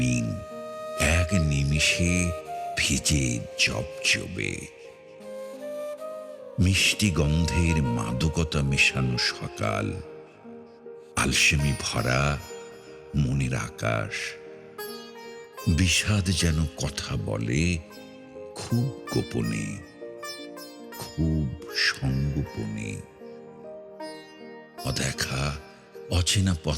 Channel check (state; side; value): identical; both; correlation 1.00